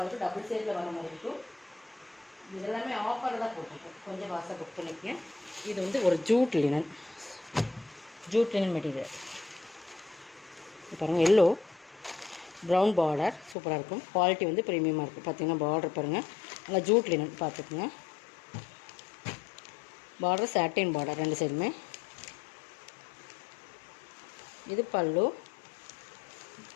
இருக்கும். டபுள் சைடில் வர மாதிரி இருக்கும். இதெல்லாமே ஆஃபரில் தான் போட்டிருக்கோம், கொஞ்சம் வாசம் புக் பண்ணிக்கங்க. இது வந்து ஒரு ஜூட் லினன் மெட்டீரியல். பாருங்கள், எல்லோ ப்ரௌன் பார்டர் சூப்பராக இருக்கும். குவாலிட்டி வந்து ப்ரீமியமாக இருக்கும். பார்த்தீங்கன்னா பார்டர் பாருங்கள், நல்லா ஜூட் லினன் பார்த்துக்குங்க. பார்டர் சாட்டின் பார்டர் ரெண்டு சைடுமே. இது பல்லு,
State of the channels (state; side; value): drops out; right; at 13.6 s